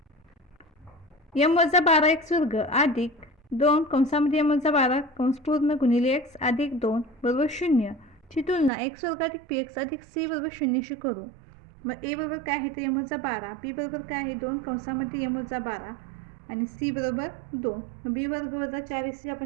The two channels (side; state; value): left; drops out; at 8.7 s